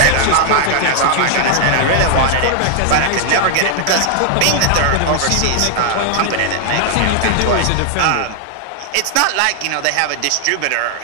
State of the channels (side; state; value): both; different; correlation 0.00